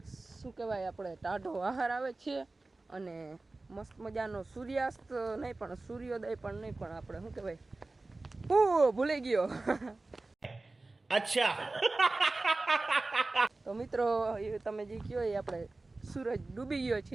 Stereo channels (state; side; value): quieter; left; 3.2 dB